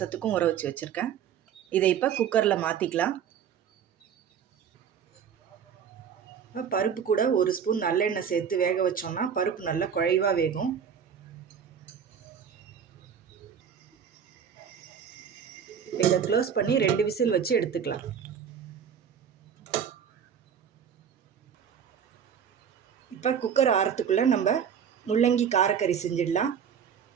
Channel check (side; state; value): left; quieter; 7.8 dB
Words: ஊற வச்சுருக்கேன். இதை இப்போ குக்கரில் மாற்றிக்கலாம். பருப்பு கூட ஒரு ஸ்பூன் நல்லெண்ணெய் சேர்த்து வேக வச்சோன்னா பருப்பு நல்லா குழைவாக வேகும். இப்போ இதை க்ளோஸ் பண்ணி 2 விசில் வச்சு எடுத்துக்கலாம். இப்போ குக்கர் ஆறத்துக்குள்ளே நம்ம முள்ளங்கி காரக்கறி செஞ்சிடலாம்.